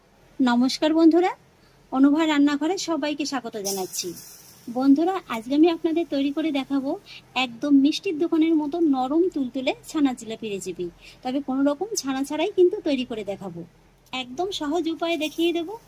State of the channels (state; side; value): identical; both; correlation 1.00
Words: নমস্কার বন্ধুরা, অনুভা রান্নাঘরে সবাইকে স্বাগত জানাচ্ছি। বন্ধুরা, আজকে আমি আপনাদের তৈরি করে দেখাবো একদম মিষ্টির দোকানের মতো নরম তুলতুলে ছানা জিলাপি রেসিপি। তবে কোনো রকম ছানা ছাড়াই কিন্তু তৈরি করে দেখাবো। একদম সহজ উপায়ে দেখিয়ে দেব।